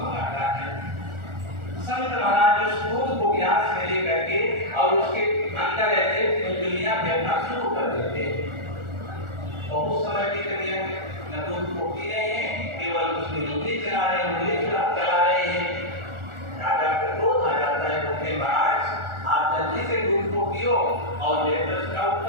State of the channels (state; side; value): late; left; 1.4 ms